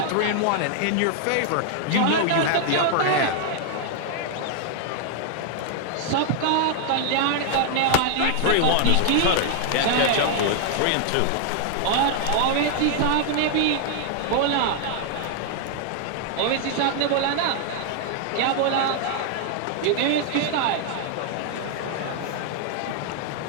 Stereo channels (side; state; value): both; different; correlation 0.00